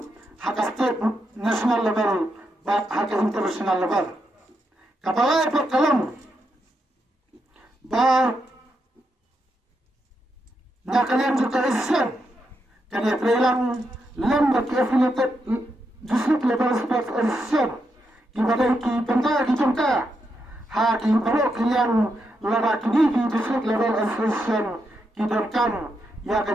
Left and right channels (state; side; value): normal; both; correlation 0.82